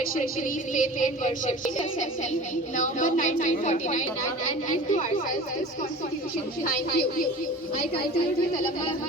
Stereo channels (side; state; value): both; normal; correlation 0.39